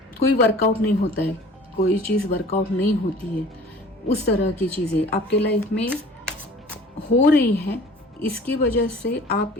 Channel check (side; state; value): both; normal; correlation 0.46